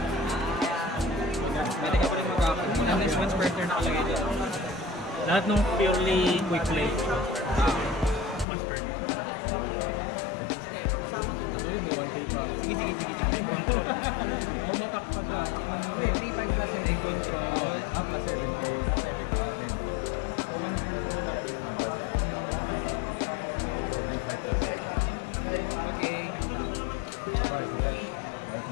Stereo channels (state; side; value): drops out; right; at 8.5 s